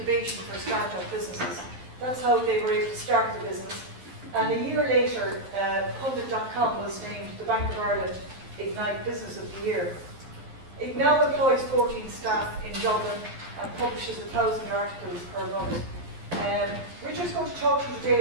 for start-up businesses. That's how they were able to start the business. And a year later, Pundit.com was named the Bank of Ireland Ignite Business of the Year. It now employs 14 staff in Dublin and publishes 1,000 articles per month. Richard's going to talk to you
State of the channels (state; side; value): late; left; 11 ms